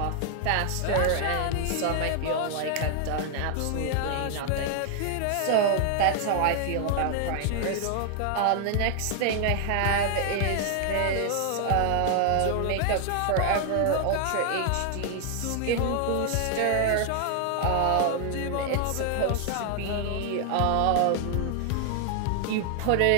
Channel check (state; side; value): different; both; correlation 0.00